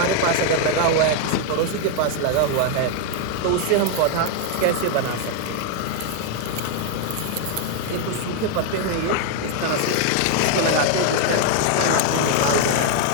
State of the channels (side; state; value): both; different; correlation 0.00